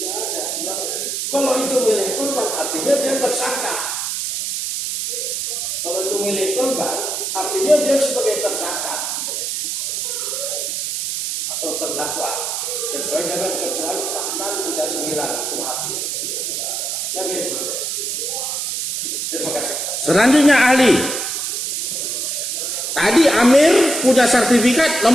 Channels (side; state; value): right; noise; hiss, 2 dB below the sound